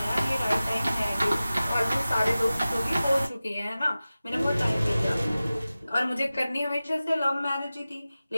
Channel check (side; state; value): both; inverted; correlation -0.96